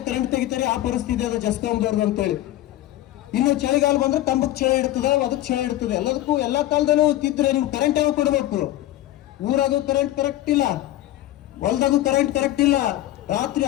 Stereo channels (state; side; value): quieter; right; 14.7 dB